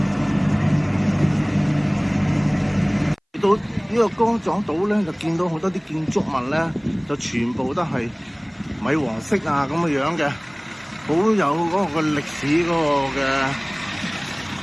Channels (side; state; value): both; identical; correlation 1.00